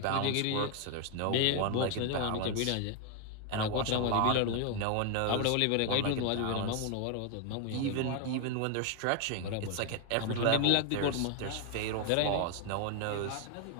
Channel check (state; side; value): different; both; correlation 0.01